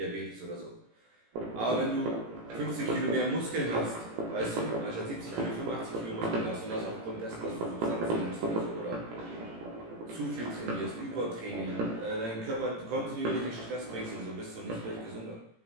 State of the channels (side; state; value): left; late; 18 ms